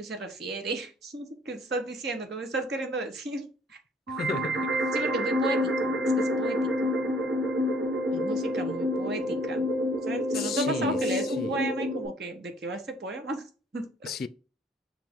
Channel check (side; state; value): both; normal; correlation 0.59